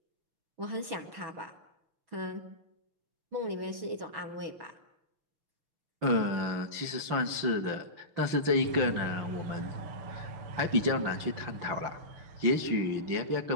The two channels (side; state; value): left; late; 5.8 ms